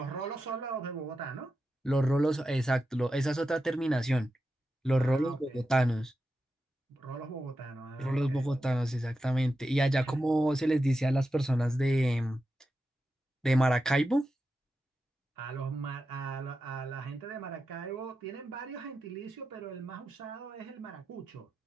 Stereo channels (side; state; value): both; normal; correlation 0.90